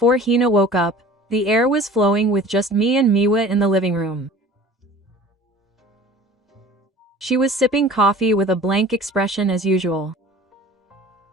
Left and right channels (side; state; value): both; normal; correlation 0.44